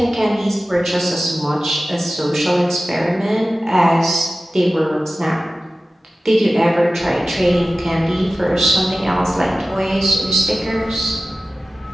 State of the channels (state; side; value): normal; both; correlation 0.96